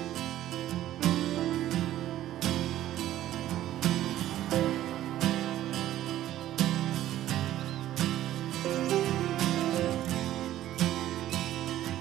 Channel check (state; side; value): quieter; left; 13.3 dB